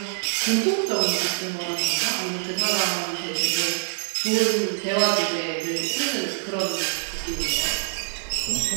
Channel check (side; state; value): left; silent; digital silence